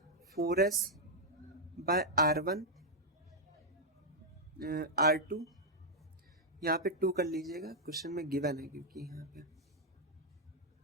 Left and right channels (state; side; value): normal; both; correlation -0.04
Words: 4S/R1 R2, यहाँ पे 2 कर लीजिएगा, क्वेश्चन में गिवन है क्योंकि यहाँ पे,